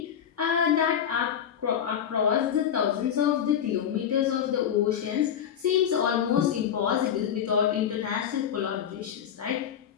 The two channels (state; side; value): quieter; right; 8.9 dB